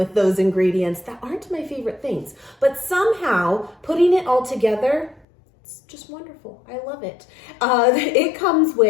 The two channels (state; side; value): drops out; right; at 5.2 s